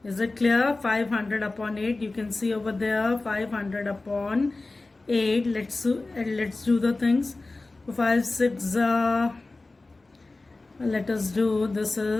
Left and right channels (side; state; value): right; quieter; 3.3 dB